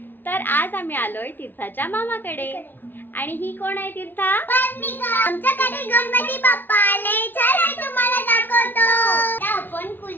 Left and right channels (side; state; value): right; late; 0.093 ms